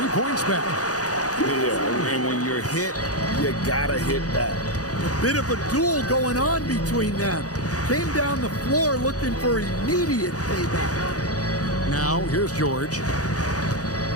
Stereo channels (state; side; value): late; right; 0.67 ms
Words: points back. Yeah, and when you're hit, you gotta hit back. A bit of a duel going on between them. Came down the floor looking for immediate payback. Now, here's George.